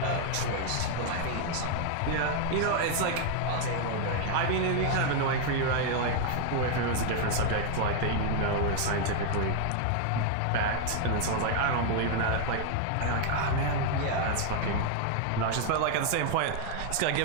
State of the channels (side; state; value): both; different; correlation 0.00